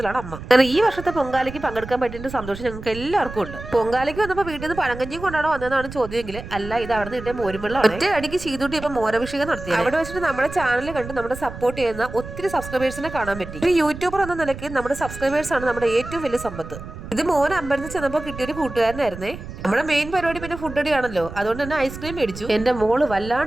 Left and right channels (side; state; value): right; noise; rumble, 12 dB below the sound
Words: അമ്മ. കാരണം ഈ വർഷത്തെ പൊങ്കാലയ്ക്ക് പങ്കെടുക്കാൻ പറ്റിയ സന്തോഷം ഞങ്ങൾക്ക് എല്ലാവർക്കും ഉണ്ട്. പൊങ്കാലയ്ക്ക് വന്നപ്പോൾ വീട്ടിൽ നിന്ന് പഴങ്കഞ്ഞിയും കൊണ്ടാണോ വന്നതെന്നാണ് ചോദ്യമെങ്കിൽ അല്ല, ഇത് അവിടെ നിന്ന് കിട്ടിയ മോരുവെള്ളം. ഒറ്റ അടിക്ക് ചീതൂട്ടി ഇപ്പൊ മോരഭിഷേകം നടത്തി. അവിടെ വെച്ചിട്ട് നമ്മുടെ ചാനൽ കണ്ട് നമ്മുടെ സപ്പോർട്ട് ചെയ്യുന്ന ഒത്തിരി സബ്സ്ക്രൈബേഴ്സിനെ കാണാൻ പറ്റി. ഒരു യൂട്യൂബർ എന്ന നിലയ്ക്ക് നമ്മുടെ സബ്സ്ക്രൈബേഴ്സ് ആണ് നമ്മുടെ ഏറ്റവും വലിയ സമ്പത്ത്. ഇത് മോൻ അമ്പലത്തിൽ ചെന്നപ്പോൾ കിട്ടിയൊരു കൂട്ടുകാരനായിരുന്നേ. നമ്മുടെ മെയിൻ പരിപാടി പിന്നെ ഫുഡ് അടിയാണല്ലോ, അതുകൊണ്ട് തന്നെ ഐസ്ക്രീം മേടിച്ചു. എന്റെ മോള്